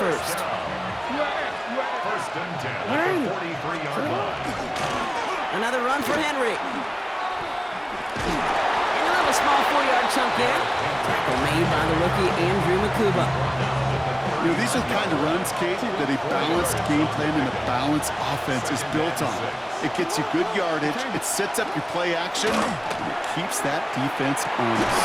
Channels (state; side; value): identical; both; correlation 1.00